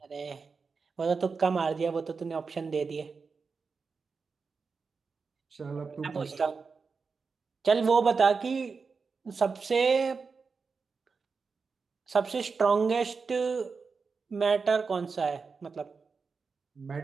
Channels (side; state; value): left; quieter; 4.9 dB